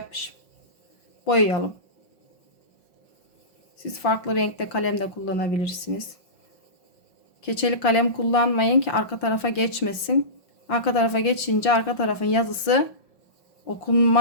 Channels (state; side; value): late; right; 5.4 ms